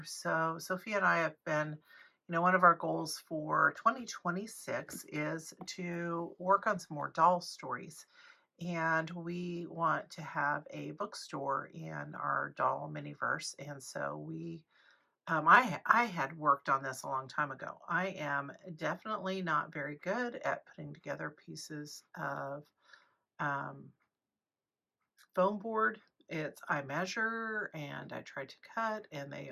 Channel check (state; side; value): identical; both; correlation 1.00